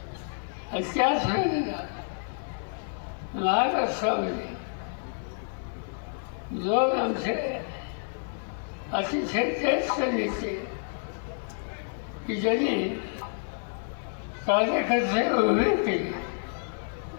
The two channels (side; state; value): right; silent; 59 dB below the other